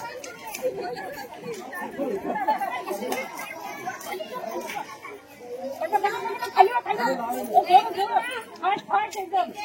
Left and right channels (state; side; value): identical; both; correlation 1.00